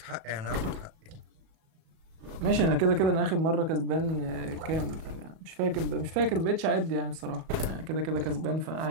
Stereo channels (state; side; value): late; left; 37 ms